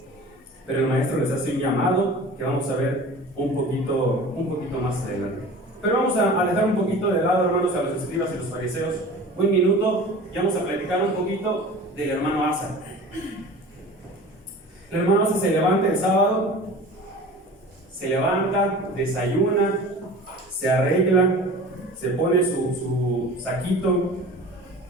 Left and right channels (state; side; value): normal; both; correlation 0.39